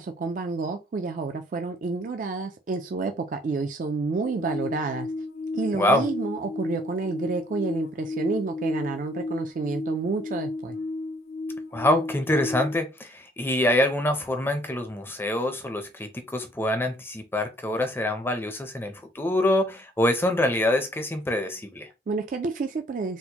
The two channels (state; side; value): normal; both; correlation 0.62